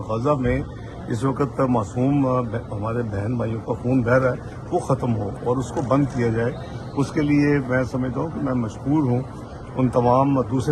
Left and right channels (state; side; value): identical; both; correlation 1.00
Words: غزہ میں اس وقت معصوم ہمارے بہن بھائیوں کا خون بہہ رہا ہے وہ ختم ہو اور اس کو بند کیا جائے. اس کے لیے میں سمجھتا ہوں کہ میں مشکور ہوں ان تمام